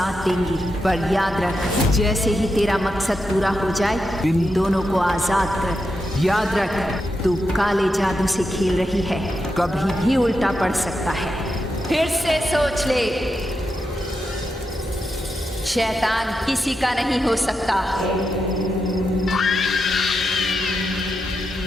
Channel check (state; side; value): normal; both; correlation 0.86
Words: देंगी, पर याद रख, जैसे ही तेरा मकसद पूरा हो जाए इन दोनों को आजाद कर। याद रख, तू काले जादू से खेल रही है, कभी भी उल्टा पड़ सकता है। फिर से सोच ले, शैतान किसी का नहीं हो सकता।